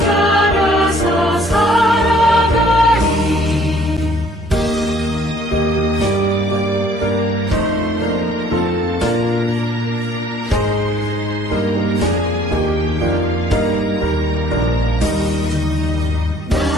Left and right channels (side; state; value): both; normal; correlation 0.58